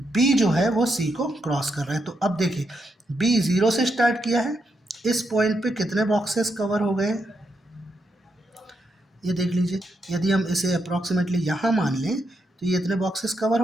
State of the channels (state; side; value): normal; both; correlation 0.82